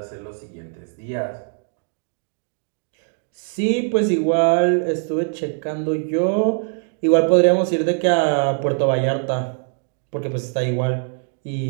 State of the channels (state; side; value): silent; left; 61 dB below the other